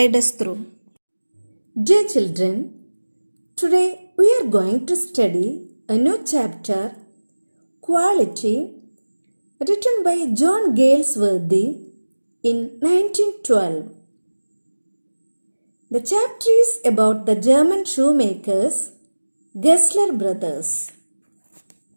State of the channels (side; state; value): both; inverted; correlation -1.00